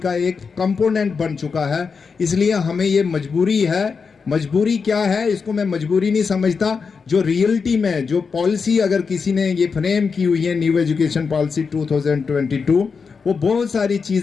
एक कंपोनेंट बन चुका है, इसलिए हमें ये मजबूरी है। मजबूरी क्या है, इसको मैं मजबूरी नहीं समझता। जो रियलिटी में जो पॉलिसी अगर किसी ने ये फ्रेम की हुई है, न्यू एजुकेशन पॉलिसी 2022, वो बहुत सारी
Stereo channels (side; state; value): right; quieter; 5.3 dB